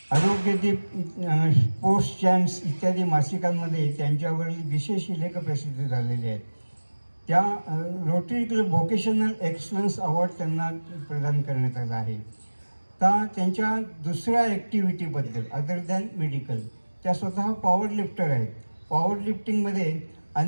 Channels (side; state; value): both; inverted; correlation -1.00